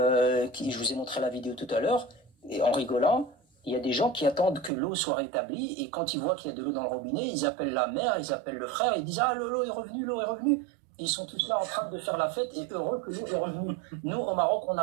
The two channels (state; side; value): drops out; left; at 4.7 s